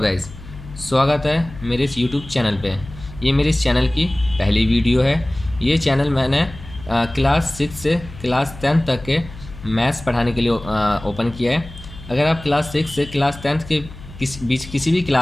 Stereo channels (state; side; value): noise; left; hum, 16 dB below the sound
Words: स्वागत है मेरे इस यूट्यूब चैनल पे। ये मेरे इस चैनल की पहली वीडियो है। ये चैनल मैंने क्लास 6 से क्लास 10 तक के मैथ्स पढ़ाने के लिए ओपन किया है। अगर आप क्लास 6 से क्लास 10 के बीच किसी भी